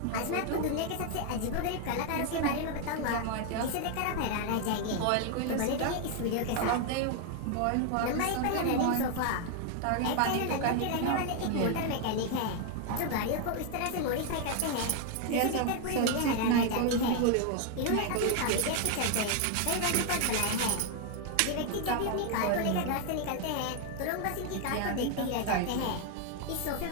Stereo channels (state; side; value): different; both; correlation 0.00